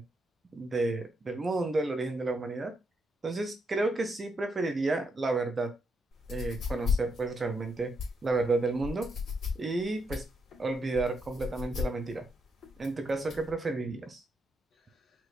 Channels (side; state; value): both; normal; correlation 0.79